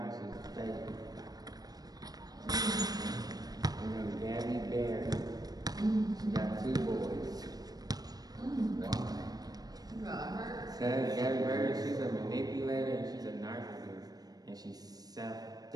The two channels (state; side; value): late; left; 0.19 ms